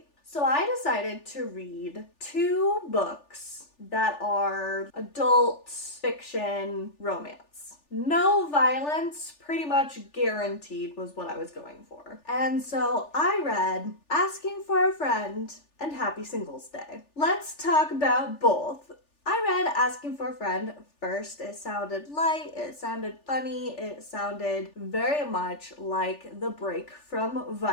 So I decided to read 2 books that are adult fiction romance. No violence, pretty much guaranteed, was what I was going for. And so I read Asking for a Friend and Happy Singles Day. Let's talk about both. I read Asking for a Friend first. It sounded light, it sounded funny, it sounded very much like the break from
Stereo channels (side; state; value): right; late; 3.4 ms